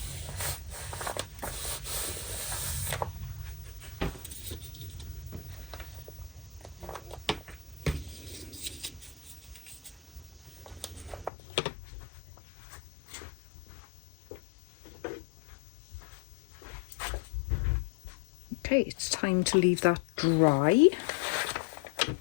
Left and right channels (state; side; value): drops out; right; at 11.3 s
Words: Okay, it's time to leave that dry,